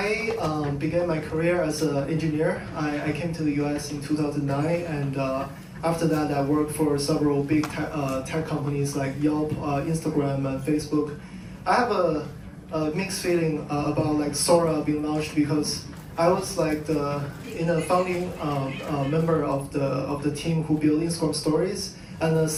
began my career as an engineer. I came to the US in 2009, and after that I worked for several big tech companies like Yelp, Instagram, and Facebook. I have a mixed feeling about Sora being launched because I was the founding member of the team who built Instagram Stories, and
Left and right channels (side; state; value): both; identical; correlation 1.00